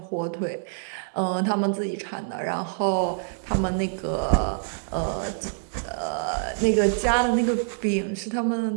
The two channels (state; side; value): silent; left; digital silence